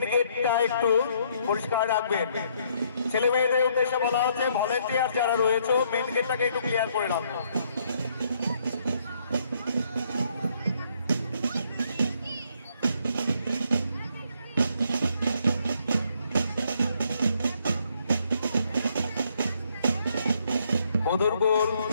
গেটটা একটু পরিষ্কার রাখবেন। ছেলে মেয়েদের উদ্দেশ্যে বলা হচ্ছে ভলেন্টিয়ার যারা রয়েছে মেন গেটটাকে একটু ক্লিয়ার করে রাখবেন। মধুরকুল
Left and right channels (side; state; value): both; inverted; correlation -0.70